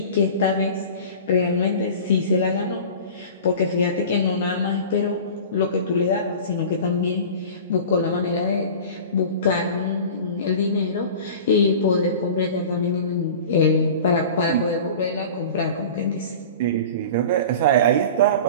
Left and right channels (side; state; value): both; inverted; correlation -0.37